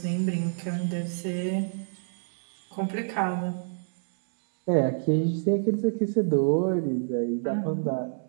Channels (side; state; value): left; silent; digital silence